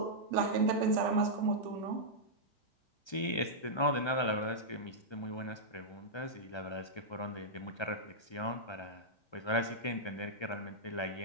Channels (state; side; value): late; right; 1.3 ms